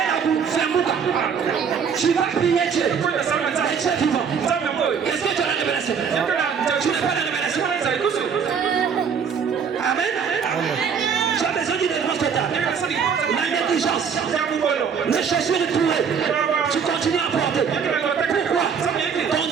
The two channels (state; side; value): quieter; left; 6.6 dB